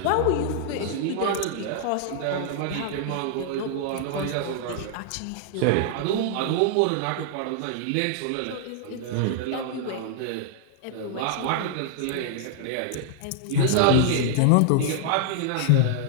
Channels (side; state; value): both; different; correlation -0.01